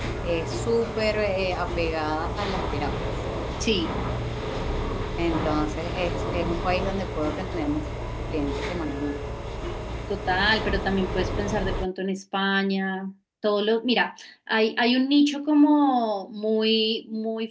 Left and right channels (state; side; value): identical; both; correlation 1.00